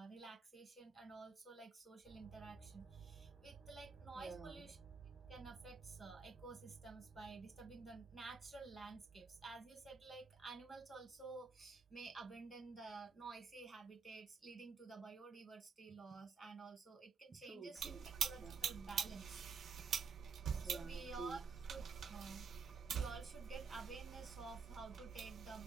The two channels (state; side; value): quieter; left; 5.4 dB